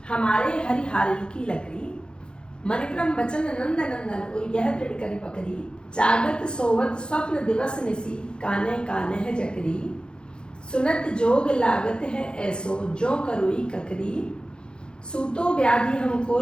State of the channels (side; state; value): right; late; 0.050 ms